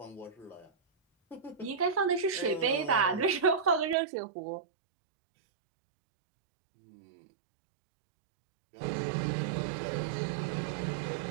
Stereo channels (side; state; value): left; drops out; at 4.0 s